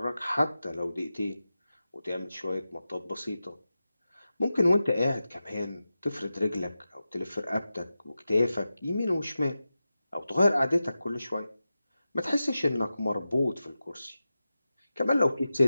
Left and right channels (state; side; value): inverted; both; correlation -0.93